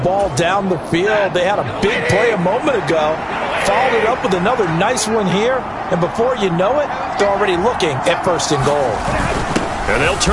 down the field? They had a big play a moment ago. Followed it up with another nice one here. And before you know it, they're already looking at 1st and goal. And they'll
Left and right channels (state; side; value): identical; both; correlation 1.00